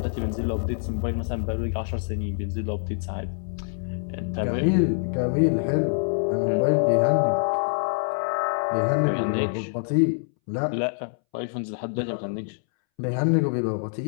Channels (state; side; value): silent; right; 61 dB below the other